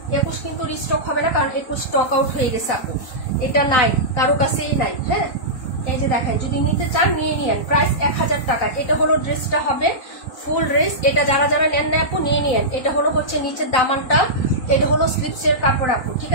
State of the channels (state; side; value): late; right; 4.0 ms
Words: 21 কিন্তু রিস্টক হবে না, কারণ 21 স্টক আউট হয়ে গেছে আপু, এটা নাই কারো কাছেই নাই। হ্যাঁ এই যে দেখেন যদি নিতে চান নিয়ে নিয়েন, প্রাইস 1000 টাকা। এটা হলো ড্রেসটা হবে ফুল ড্রেস, এটা যারা যারা নেন না আপু নিয়ে নিয়েন। এটা হলো হচ্ছে নিচের দামানটা, এটা হলো স্লিপসের কাপড় আপু, ঠিক